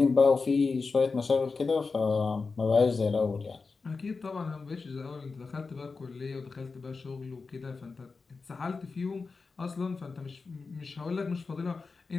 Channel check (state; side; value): quieter; right; 4.4 dB